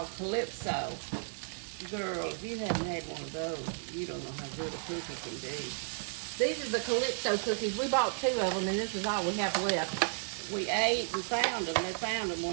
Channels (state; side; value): silent; left; digital silence